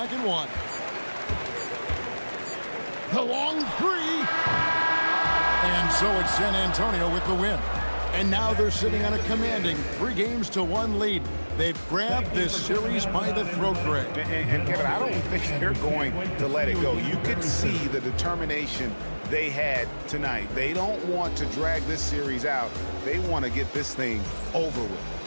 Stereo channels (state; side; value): inverted; both; correlation -1.00